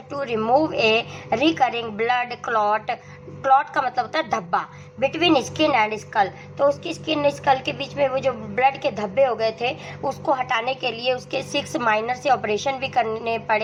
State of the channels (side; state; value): both; identical; correlation 1.00